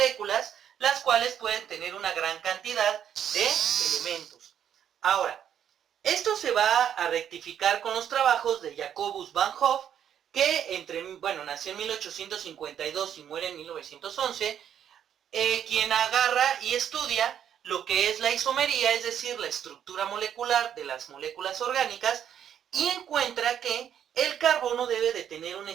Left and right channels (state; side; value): quieter; left; 9.3 dB